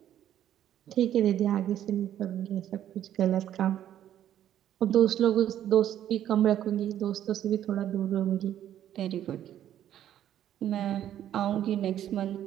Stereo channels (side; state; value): left; quieter; 11.2 dB